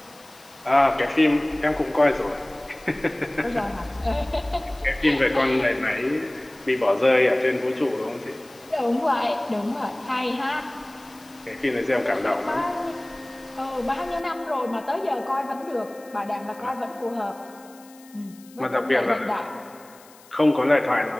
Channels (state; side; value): noise; left; hiss, 25 dB below the sound